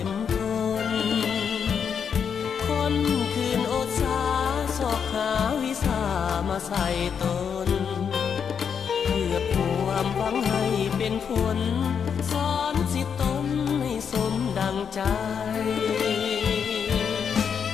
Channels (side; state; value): right; quieter; 7.1 dB